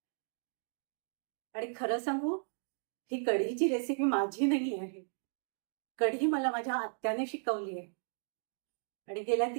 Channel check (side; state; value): left; silent; digital silence